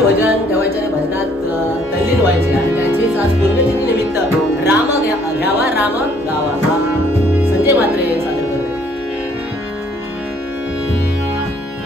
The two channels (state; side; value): normal; both; correlation 0.62